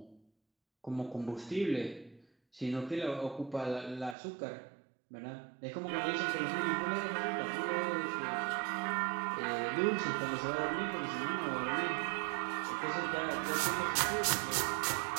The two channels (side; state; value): left; drops out; at 4.2 s